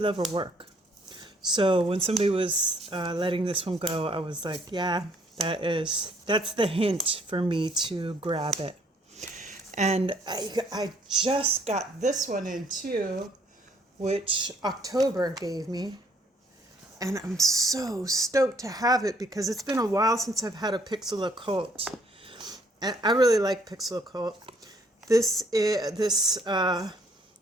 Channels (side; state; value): both; normal; correlation 0.64